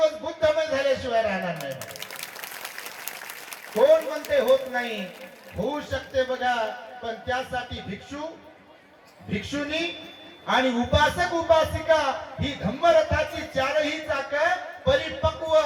बुद्धमय झाल्याशिवाय राहणार नाही. कोण म्हणते होत नाही? होऊ शकते बघा. पण त्यासाठी भिक्षू, भिक्षुनी आणि उपासक उपासिका ही धम्मरथाची चारही चाक परिपक्व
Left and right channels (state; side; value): identical; both; correlation 1.00